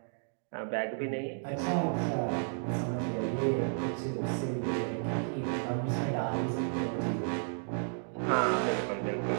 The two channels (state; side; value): silent; left; digital silence